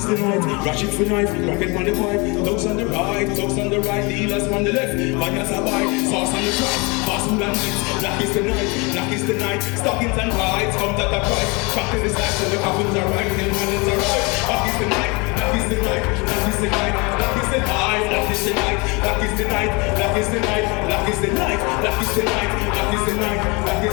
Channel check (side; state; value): right; quieter; 28.3 dB